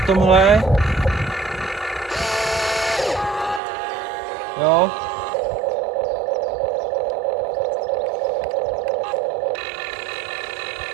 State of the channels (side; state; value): left; drops out; at 3.6 s